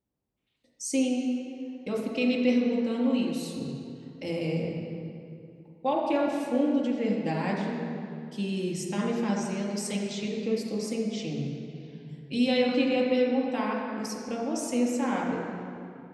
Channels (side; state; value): both; identical; correlation 1.00